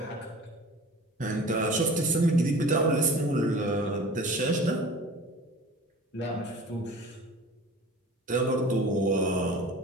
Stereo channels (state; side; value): normal; both; correlation 0.41